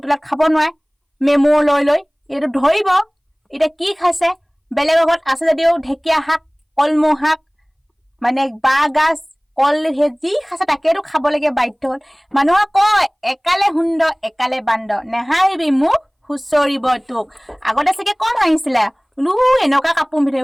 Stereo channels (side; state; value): both; identical; correlation 1.00